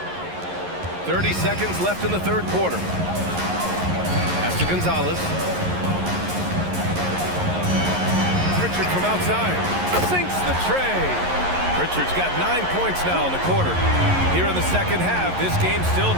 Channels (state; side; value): late; left; 11 ms